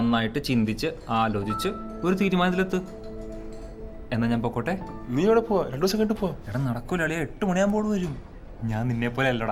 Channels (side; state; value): both; identical; correlation 1.00